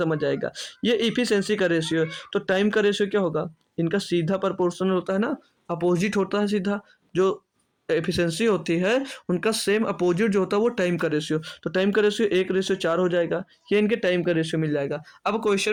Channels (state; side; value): identical; both; correlation 1.00